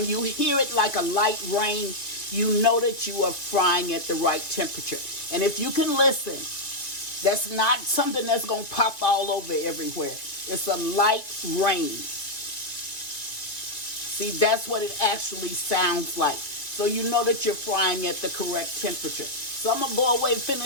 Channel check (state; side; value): late; right; 2.4 ms